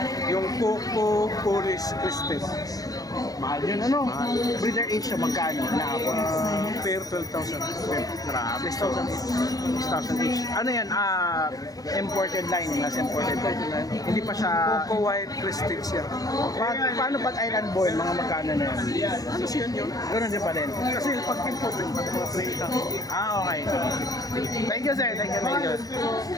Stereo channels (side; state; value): right; late; 0.18 ms